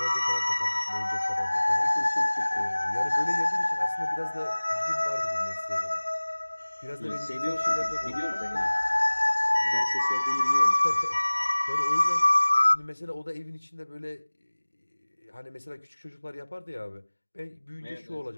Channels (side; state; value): both; inverted; correlation -1.00